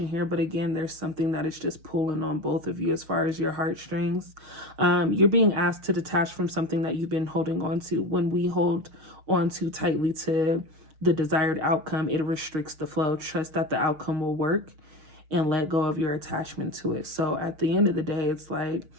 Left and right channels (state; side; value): late; left; 6.4 ms